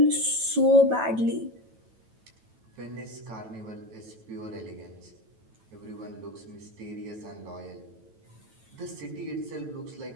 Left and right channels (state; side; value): late; left; 9.1 ms